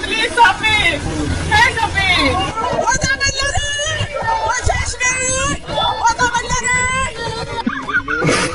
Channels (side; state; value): both; identical; correlation 1.00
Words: please Sabir, হ্যাঁ সাবির।